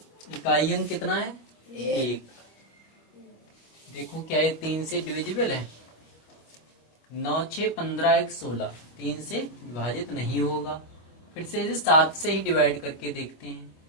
इकाई अंक कितना है 1। देखो क्या ये 3 से डिविजिबल है, 9 6 15 1 16, 3 से विभाजित नहीं होगा। फिर से इसे 7 से ही डिवाइड करके देखते हैं,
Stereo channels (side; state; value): right; late; 25 ms